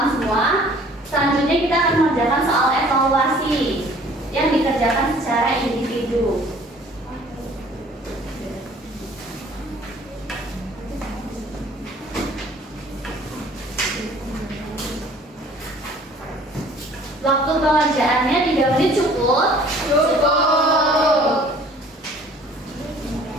semua, selanjutnya kita akan mengerjakan soal evaluasi yang dikerjakan secara individu. Waktu pengerjaannya 3 menit cukup? Cukup.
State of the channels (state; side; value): normal; both; correlation 0.53